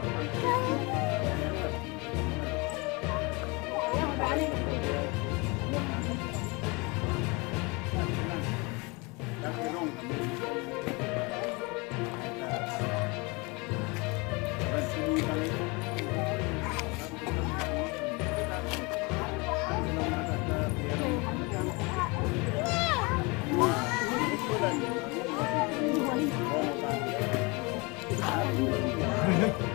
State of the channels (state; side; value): quieter; right; 27.6 dB